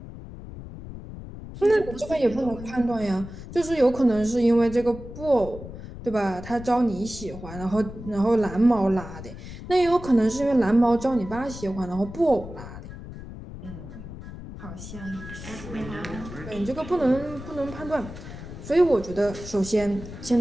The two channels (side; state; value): left; noise; rumble, 12 dB below the sound